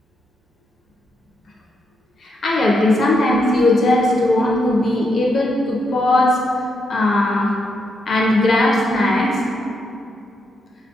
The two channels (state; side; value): normal; both; correlation 0.80